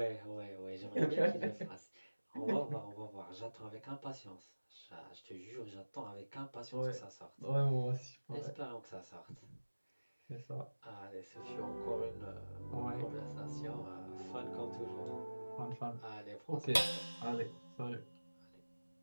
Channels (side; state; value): both; inverted; correlation -1.00